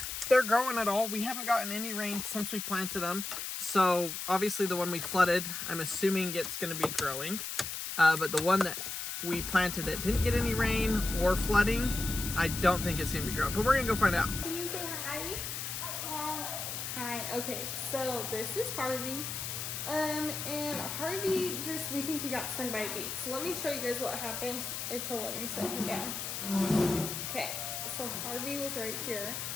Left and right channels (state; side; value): noise; left; hiss, 5 dB below the sound